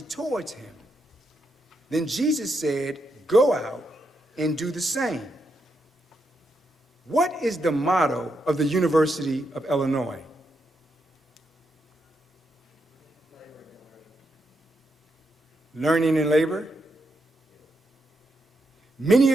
towards him. Then Jesus said, go out and do the same. What is the motto of the University of Illinois? Learning and labor? Many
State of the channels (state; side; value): normal; both; correlation 0.82